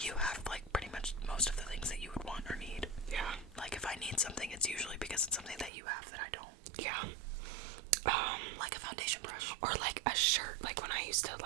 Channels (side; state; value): left; drops out; at 5.7 s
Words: have, like, pretty much most of the things that you would want or need. Yeah. Like, if I need something, it's usually because it's something that you have that I don't. Yeah. Like a foundation brush. Or like a shirt, like when I used to,